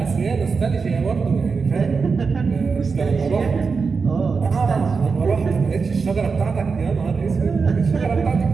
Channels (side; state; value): left; quieter; 5.0 dB